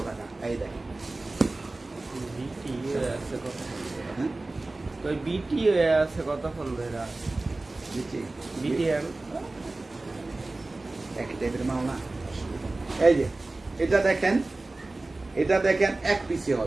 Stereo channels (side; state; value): left; quieter; 3.1 dB